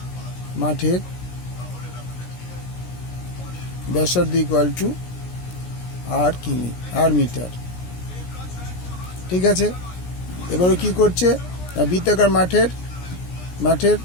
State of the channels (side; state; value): right; late; 17 ms